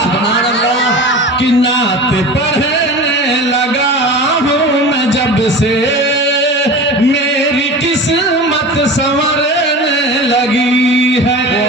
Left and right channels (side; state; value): both; normal; correlation 0.34